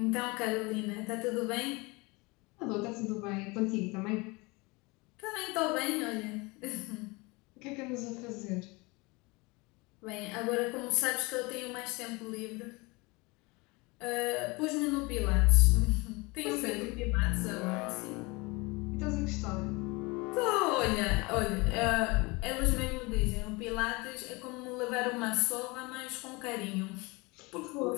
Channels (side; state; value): right; quieter; 25.6 dB